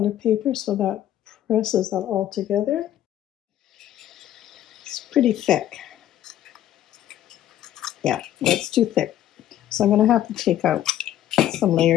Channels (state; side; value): quieter; right; 12.2 dB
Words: paper so that presses that all together. It's pretty thick. Yeah, that's too thick. So I'm going to have to take out some